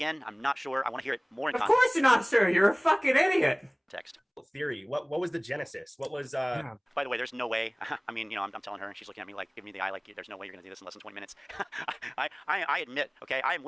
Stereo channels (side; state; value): both; identical; correlation 1.00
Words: I'm not sure. I want to hear it more in Of course you're not sure. You're a fucking idiot. context. Theory. What was the genesis? What was By the way, there's no way. I mean, you know, I'm telling her and she's looking at me like, giving me the eye like, there's no way you're going to do this in less than 20 minutes. I admit, okay, I am